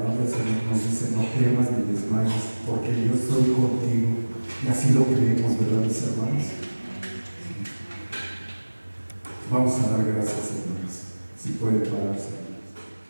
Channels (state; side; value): inverted; both; correlation -1.00